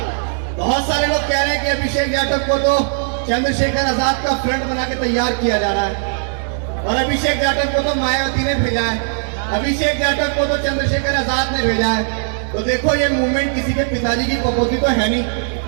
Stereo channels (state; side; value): silent; left; 67 dB below the other